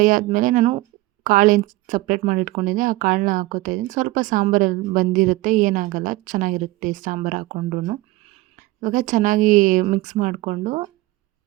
ಆದಮೇಲೆ ನಾನು ಕಾಳೇನು ಸಪ್ರೇಟ್ ಮಾಡಿ ಇಟ್ಕೊಂಡಿದ್ದೆ ಆ ಕಾಳನ್ನ ಹಾಕ್ಕೋತಾ ಇದ್ದೀನಿ. ಸ್ವಲ್ಪ ಸಾಂಬಾರಲ್ಲಿ ಬಂದಿರುತ್ತೆ, ಏನಾಗಲ್ಲ, ಚೆನ್ನಾಗಿರುತ್ತೆ ಸಾಂಬಾರು ಹಾಕ್ಕೊಂಡ್ರೂ. ಇವಾಗ ಚೆನ್ನಾಗಿ ಮಿಕ್ಸ್ ಮಾಡಿಕೊಂಡು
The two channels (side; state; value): left; quieter; 19.1 dB